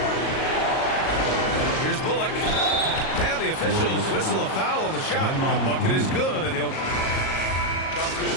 Here's Bullock. And the officials whistle a foul on the shot. The bucket is good, and he'll... Shot's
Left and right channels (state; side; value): late; right; 37 ms